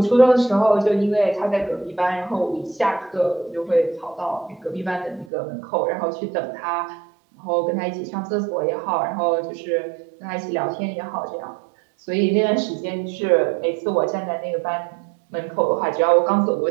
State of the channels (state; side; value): drops out; left; at 5.3 s